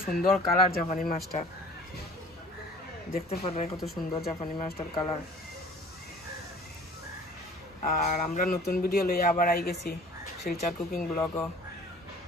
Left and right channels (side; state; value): both; normal; correlation 0.49